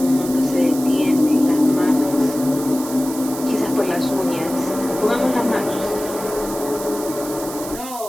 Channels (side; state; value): right; noise; hiss, 11 dB below the sound